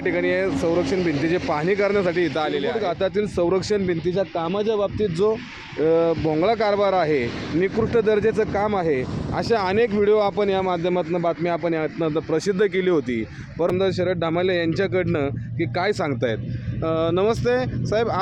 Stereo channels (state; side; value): noise; right; rumble, 28 dB below the sound